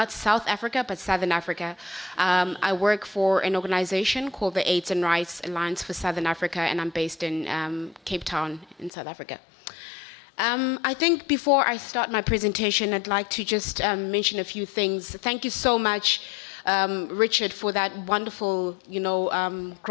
South Africa, but Southern Africa. I work for an organization called the AIDS and Rights Alliance for Southern Africa, and I'm based in Cape Town in South Africa. I think before I start my presentation, I'd like to just mention a few things. Thank you so much Richard for that wonderful,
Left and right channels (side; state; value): right; drops out; at 8.9 s